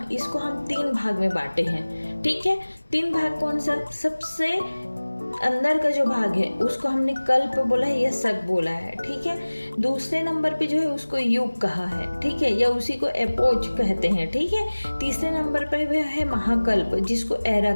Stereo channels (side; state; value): both; inverted; correlation -1.00